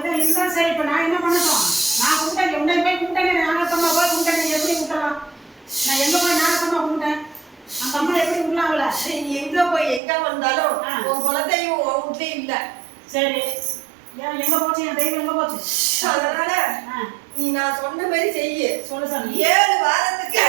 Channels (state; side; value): drops out; left; at 10.0 s